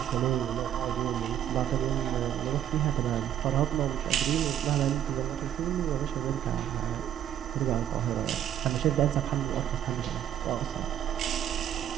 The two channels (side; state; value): left; quieter; 10.5 dB